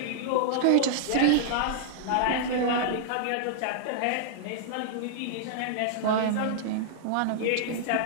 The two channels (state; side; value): different; both; correlation -0.01